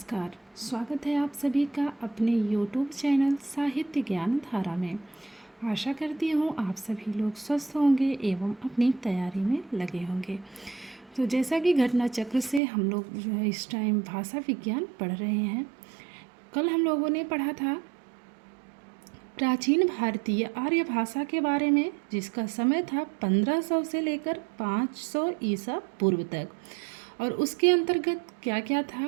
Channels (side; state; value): left; drops out; at 12.6 s